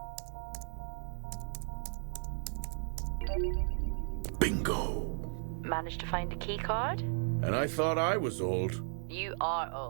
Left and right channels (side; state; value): left; silent; 54 dB below the other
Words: Bingo! Managed to find a key card? And I thought I was old. You are